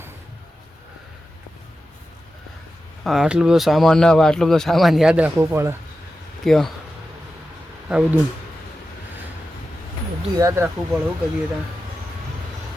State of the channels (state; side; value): normal; both; correlation 0.92